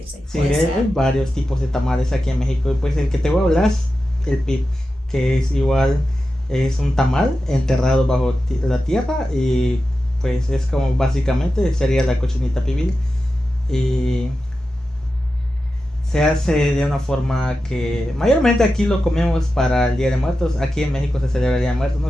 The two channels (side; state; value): both; normal; correlation 0.91